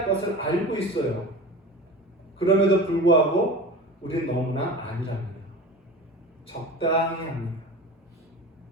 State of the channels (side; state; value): both; normal; correlation 0.33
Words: 것을 알고 있어요. 그럼에도 불구하고 우리는 너무나 아니랍니다. 적당히 합니다.